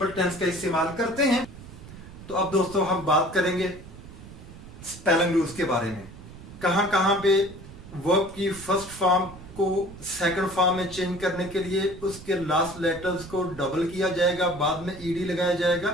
टेंस का इस्तेमाल करते हैं। तो अब दोस्तों हम बात करेंगे स्पेलिंग रूल्स के बारे में। कहां कहां पे वर्ब की फर्स्ट फॉर्म को सेकंड फॉर्म में चेंज करने के लिए उसके लास्ट लेटर्स को डबल किया जाएगा, बाद में ईडी लगाया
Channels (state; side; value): noise; right; rumble, 16 dB below the sound